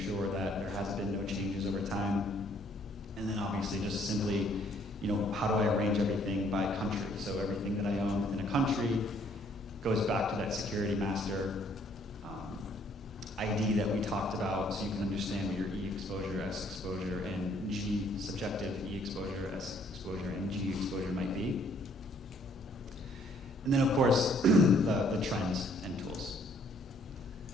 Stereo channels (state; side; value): normal; both; correlation 0.64